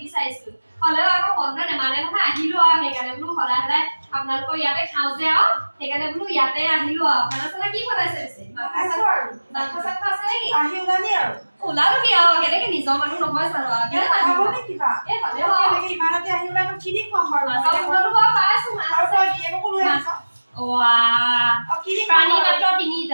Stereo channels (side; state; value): both; inverted; correlation -1.00